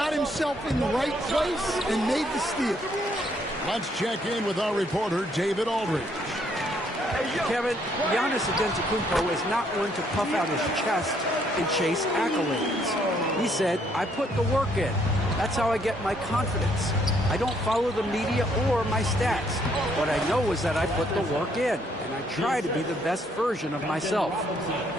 himself in the right place and made the steal. Let's check in with our reporter, David Aldridge. Kevin, Giannis Antetokounmpo is not one to puff out his chest and chase accolades. He said, I put the work in. That's how I get my confidence. I don't follow the media or my stats. What I know is that I put the work in, and I try to be the best version of myself.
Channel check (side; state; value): both; normal; correlation 0.69